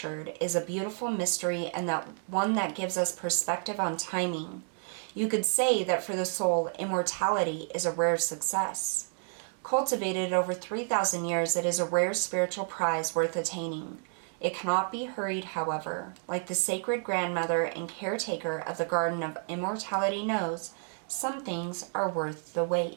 is a beautiful mystery, and that one that gives us perspective on timing. You could say that for the soul, immortality is a rare success. Cultivated over 3,000 years, it is a rare spiritual prize worth attaining. It cannot be hurried, however. Like the sacred grandmother and caretaker of the Garden of Immortality knows, some things are worth the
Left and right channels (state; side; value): silent; left; 57 dB below the other